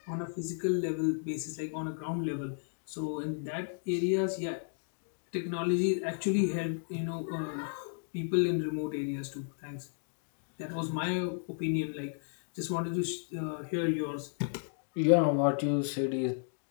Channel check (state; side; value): silent; right; digital silence